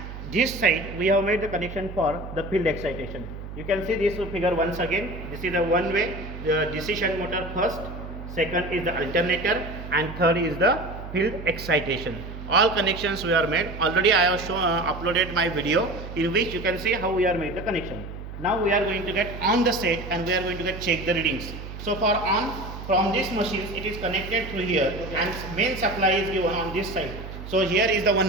this side we have made the connection for the field excitation. You can see this figure once again. This is the one way, the DC shunt motor first, second is the alternator, and third is the field excitation. All connections we are made. Already I have shown, uploaded my video in which you can see how we are made the connection. Now we are going to get on the set and we are going to get check the readings. So for on, from this machine it is connected through here, and main supply is given on this side. So here is the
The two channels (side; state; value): right; noise; hum, 10 dB below the sound